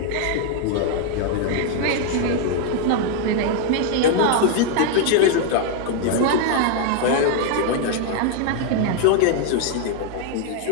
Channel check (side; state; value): both; different; correlation 0.00